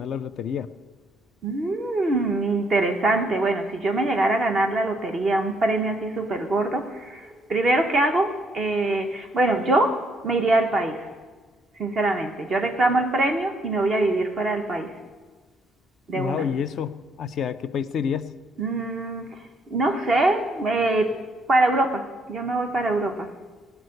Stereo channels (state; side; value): normal; both; correlation 0.70